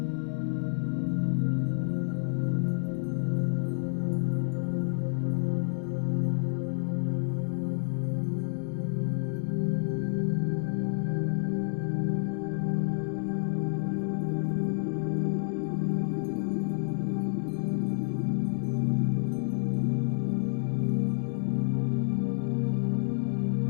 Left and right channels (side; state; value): right; silent; 58 dB below the other